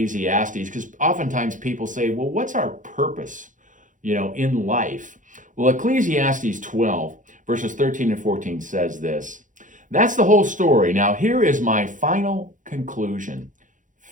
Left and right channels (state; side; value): late; left; 0.37 ms